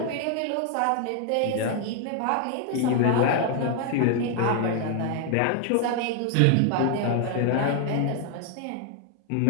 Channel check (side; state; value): both; different; correlation 0.00